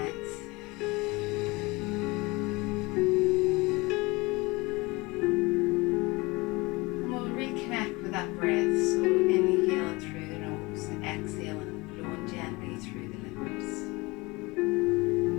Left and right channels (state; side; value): quieter; right; 23.8 dB